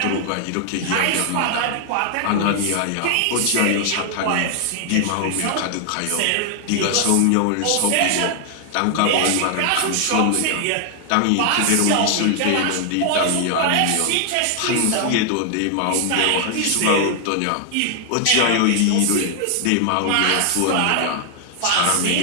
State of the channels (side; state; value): both; different; correlation 0.00